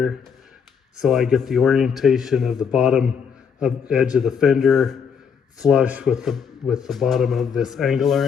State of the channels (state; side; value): quieter; right; 6.7 dB